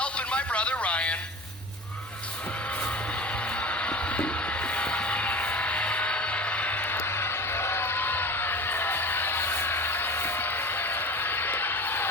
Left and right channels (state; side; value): normal; both; correlation 0.34